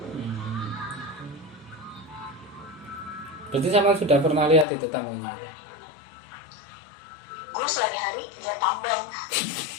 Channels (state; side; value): drops out; right; at 4.7 s